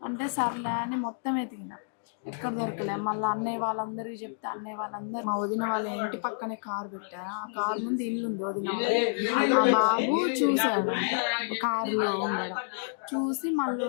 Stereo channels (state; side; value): silent; right; digital silence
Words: అంటే సర్లే అని మొత్తం ఎతికిన, ఎక్కడ దొరకలే. మళ్ళీ అన్నయ్య వాళ్ళందరికీ చెప్తే అన్నయ్య వాళ్ళందరూ మా వదిన వాళ్ళ ఇంటి పక్కనే కారు పెట్టారు. ఆ కారు ముందు ఇల్లు ఉంది వదిన వాళ్ళ. ఆ బాబు చూశాడంట కారులో ఉండడం. చూసి మళ్ళీ